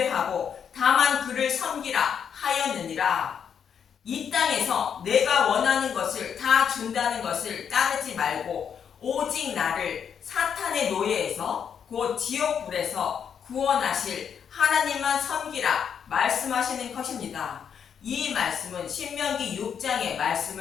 다만 그를 섬기라 하였느니라. 이 땅에서 내가 원하는 것을 다 준다는 것을 따르지 말고 오직 나를 사탄의 노예에서 곧 지옥불에서 구원하실 하나님만 섬기라 말씀하시는 것입니다. 이 말씀은 신명기 6장의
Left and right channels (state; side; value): quieter; right; 7.7 dB